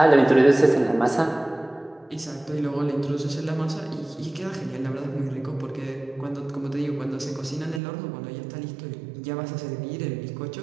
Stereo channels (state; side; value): drops out; left; at 7.8 s